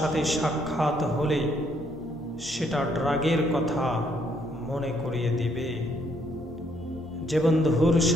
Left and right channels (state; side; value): normal; both; correlation 0.70